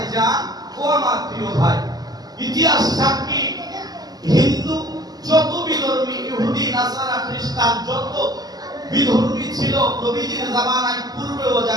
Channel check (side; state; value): left; late; 0.19 ms